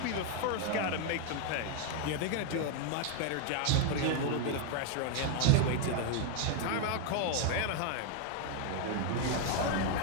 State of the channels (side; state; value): both; different; correlation 0.01